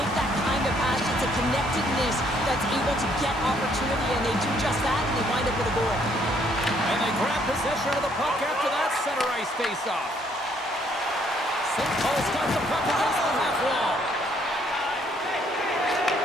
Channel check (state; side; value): normal; both; correlation 0.67